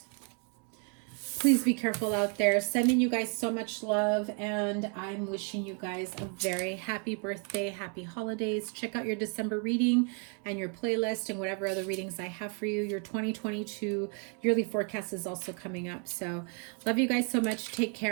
Please be careful out there. Sending you guys so much love, and I'm wishing you guys a very happy birthday, happy holidays. Check out your December reading and your playlist and whatever other readings I have for you. Your 2022 yearly forecast is also coming up. So love you guys so much. Take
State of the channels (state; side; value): quieter; left; 36.4 dB